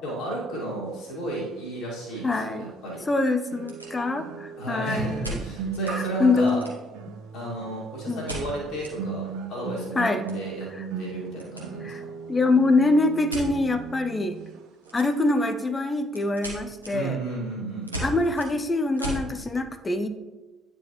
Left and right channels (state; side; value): normal; both; correlation 0.68